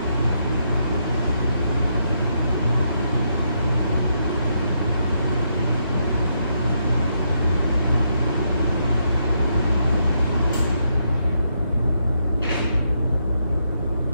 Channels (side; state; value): both; inverted; correlation -0.79